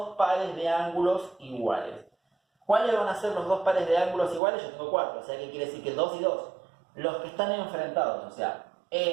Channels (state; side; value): drops out; left; at 4.4 s